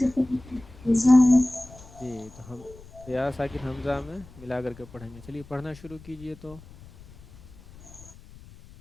پہلے حمزہ ہے. جی تو ہم یا ساکن حمزہ میں ملا کر کے پڑھیں گے. چلیے پڑھنا شروع کیجئے. تو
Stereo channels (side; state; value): left; noise; rumble, 20 dB below the sound